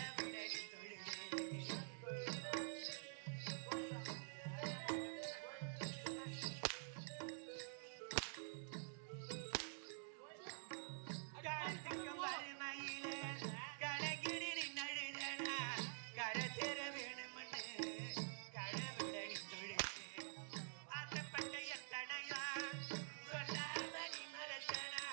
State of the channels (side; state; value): left; silent; digital silence